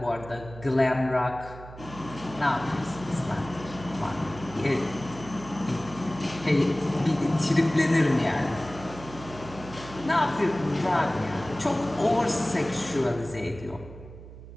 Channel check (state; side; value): noise; right; hum, 15 dB below the sound